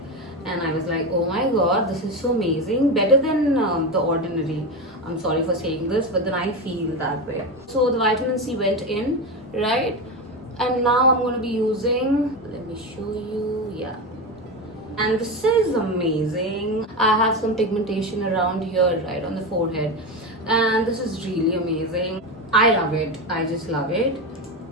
And I was like, oh my god, this is so amazing. Better than the Ordinary. I'm sorry for saying this, but then I feel that way. So the vitamin C went in, right? And now I'm going to be using, let me show you, yeah. And this is amazing. I have some pigmentation around here, right on the forehead. And this is really amazing. I love it. I just love it.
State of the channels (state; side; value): normal; both; correlation 0.18